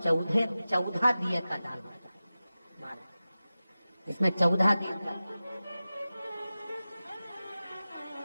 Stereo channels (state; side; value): inverted; both; correlation -0.96